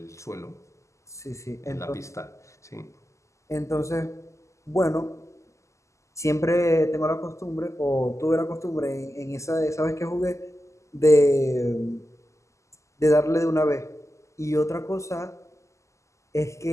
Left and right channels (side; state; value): right; late; 0.15 ms